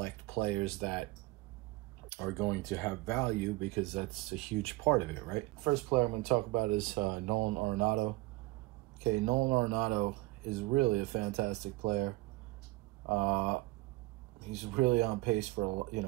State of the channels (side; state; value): left; quieter; 21.0 dB